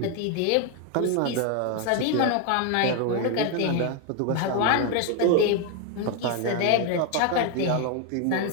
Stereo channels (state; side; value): different; both; correlation 0.01